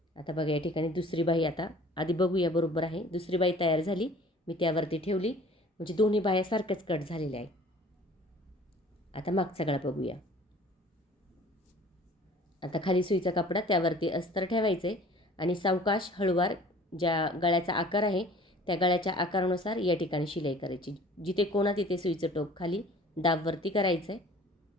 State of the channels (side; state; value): both; normal; correlation 0.50